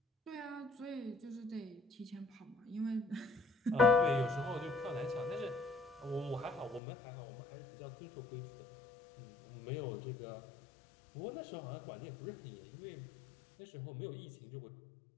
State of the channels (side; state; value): right; drops out; at 6.8 s